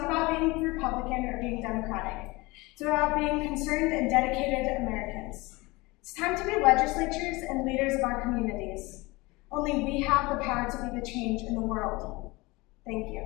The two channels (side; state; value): right; quieter; 23.3 dB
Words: about being Republican or being Democratic. It's about being concerned and dedicated Americans. It's time to be legislators and leaders of our communities. Only we have the power to be the change in the world. Thank